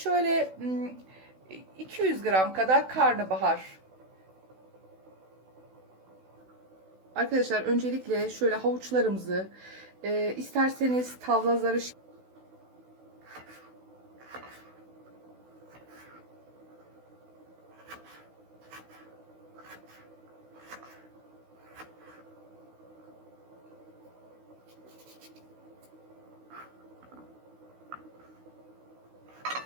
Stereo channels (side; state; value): left; late; 16 ms